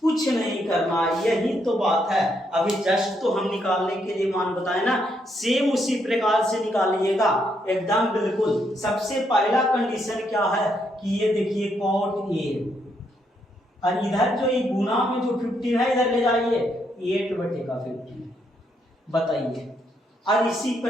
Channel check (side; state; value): both; normal; correlation 0.76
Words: कुछ नहीं करना, यही तो बात है। अभी जस्ट तो हम निकालने के लिए मान बताए ना, सेम उसी प्रकार से निकालिएगा एकदम बिल्कुल। सबसे पहला कंडीशन क्या है कि ये देखिए कॉट ए, और इधर जो ये गुना में जो 15 है इधर ले जाइए 8/15 बताइए। और इसी